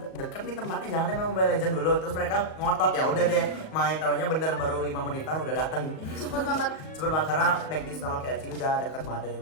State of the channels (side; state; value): right; late; 38 ms